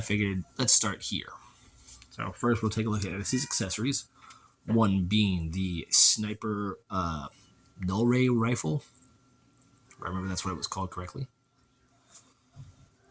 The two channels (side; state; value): both; identical; correlation 1.00